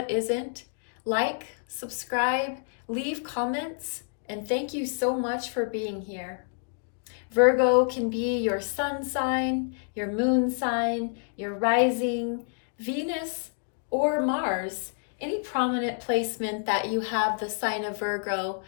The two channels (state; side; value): silent; right; digital silence